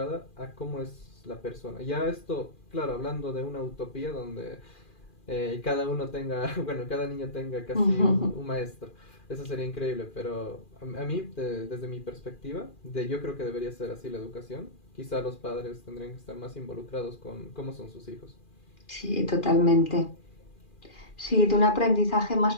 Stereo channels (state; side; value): late; right; 2.4 ms